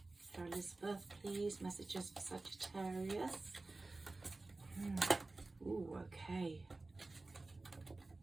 For Elizabeth, please. Messages for Sagittarius. Ooh, okay.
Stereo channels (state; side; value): quieter; left; 3.3 dB